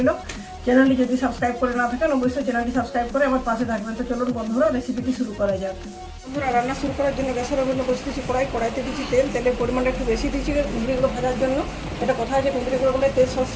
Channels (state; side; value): identical; both; correlation 1.00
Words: চ্যানেলটি যদি সাবস্ক্রাইব করে না থাকেন অবশ্যই চ্যানেলটি সাবস্ক্রাইব করে আমার পাশে থাকবেন। তো চলুন বন্ধুরা রেসিপিটি শুরু করা যাক। বন্ধুরা, রান্না শুরু করার জন্য গ্যাসের ওভেনে বসে দিচ্ছি কড়াইতে দিচ্ছি তেলের পরিমাণটা একটু বেশি দিচ্ছি কুন্দ্রিগুলো ভাজার জন্য। এটা কথা আছে, কুন্দ্রিগুলো বলে তেল